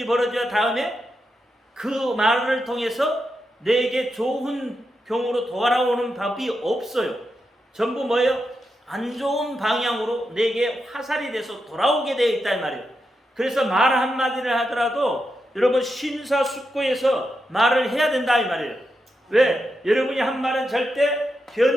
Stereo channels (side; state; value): both; normal; correlation 0.86